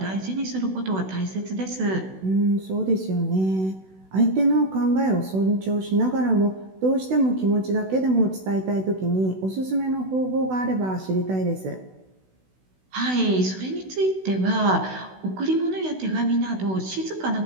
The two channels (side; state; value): left; late; 16 ms